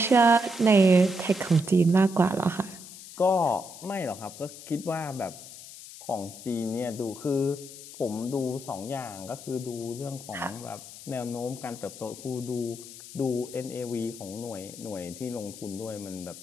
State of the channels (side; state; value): left; noise; hiss, 15 dB below the sound